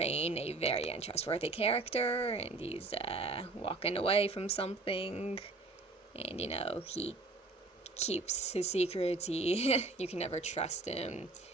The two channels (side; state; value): left; quieter; 3.4 dB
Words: a very untrustworthy character, and he's walking away from something. And, he keeps his secrets. You can never trust him.